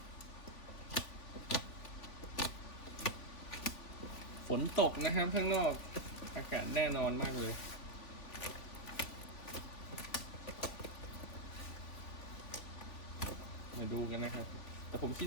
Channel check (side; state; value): right; late; 3.5 ms